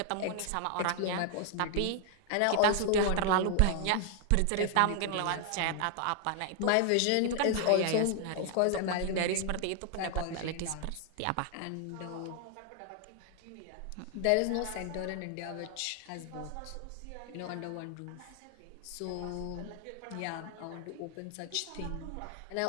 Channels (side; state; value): both; different; correlation 0.00